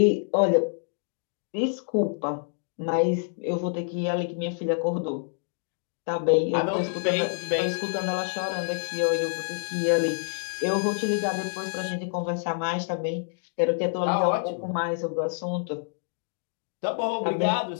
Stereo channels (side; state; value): right; silent; 60 dB below the other